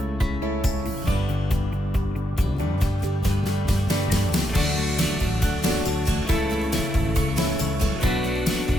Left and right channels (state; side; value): normal; both; correlation 0.80